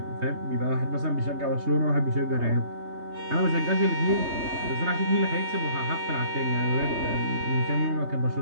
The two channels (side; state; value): left; late; 3.2 ms